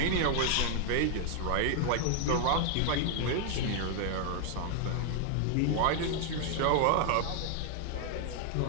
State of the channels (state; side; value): different; both; correlation 0.00